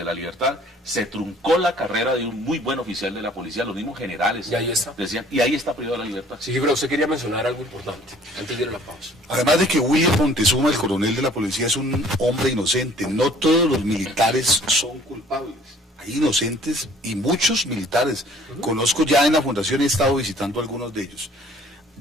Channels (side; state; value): both; normal; correlation 0.55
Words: la libertad. Se truncó la carrera de un muy buen oficial de la policía, los mismos generales decían, y ahí está privado de la libertad. Sí, pero usted quería mencionar algo importante antes de ir a la pausa. Además de que William Montezuma, el coronel de la policía, es un hombre inocente, no todos los militares son culpables. Hay inocentes y muchos militares. Conozco ya en la fundación, he estado visitando algunos de ellos.